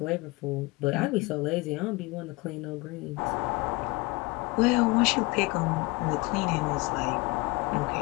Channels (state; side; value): quieter; right; 24.2 dB